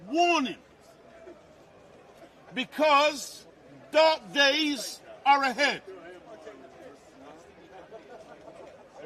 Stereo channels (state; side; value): identical; both; correlation 1.00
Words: warning, because dark days are ahead.